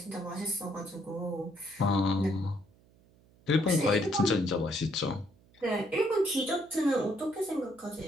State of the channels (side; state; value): right; noise; hum, 29 dB below the sound